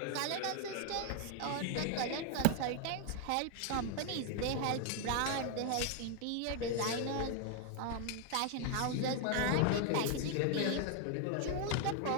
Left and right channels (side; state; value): both; different; correlation 0.00